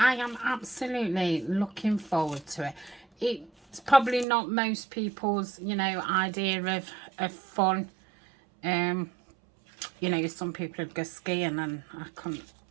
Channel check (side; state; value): left; drops out; at 4.2 s